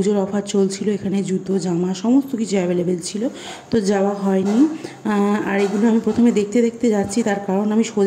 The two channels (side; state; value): both; identical; correlation 1.00